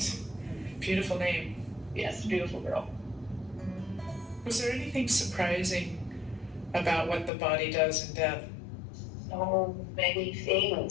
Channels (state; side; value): drops out; right; at 7.3 s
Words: Beautiful name. Yes, beautiful girl. Was there anything surprising about what the body does in death? So many